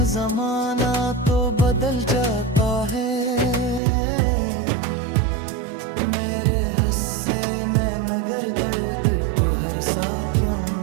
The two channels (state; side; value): drops out; left; at 3.8 s